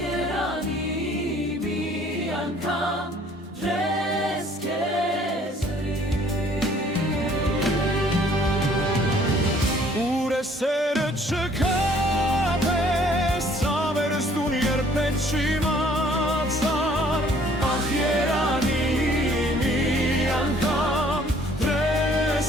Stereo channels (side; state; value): both; normal; correlation 0.58